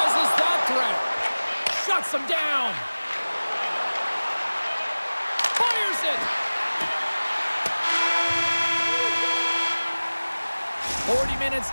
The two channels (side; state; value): both; inverted; correlation -1.00